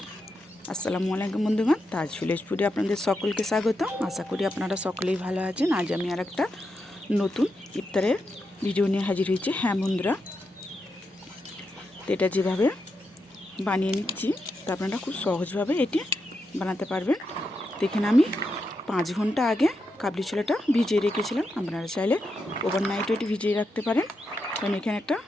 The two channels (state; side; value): normal; both; correlation 0.85